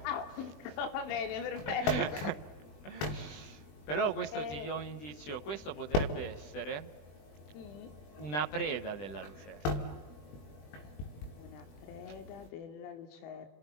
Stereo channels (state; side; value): late; right; 20 ms